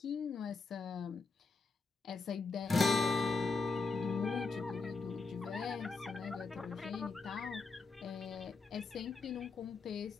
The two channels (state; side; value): quieter; right; 4.3 dB